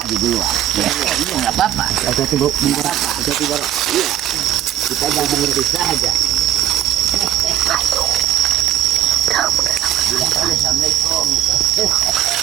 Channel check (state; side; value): quieter; left; 12.0 dB